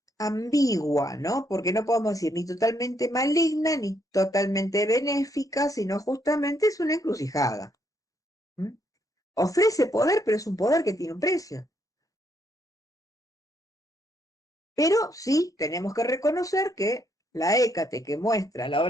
ambigua, ¿no? Porque no podemos decir ni totalmente maligna ni totalmente benéfica, sino justamente es una encrucijada. ¿Mm? Ofrece poder, pero es un poder que tiene un precio. Pero sí tenemos que reconocer que la Hécate que muestra la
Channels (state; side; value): normal; both; correlation 0.74